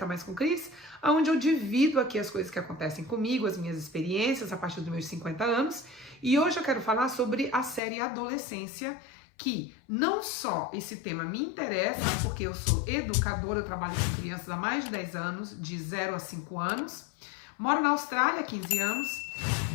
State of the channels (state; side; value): drops out; right; at 7.8 s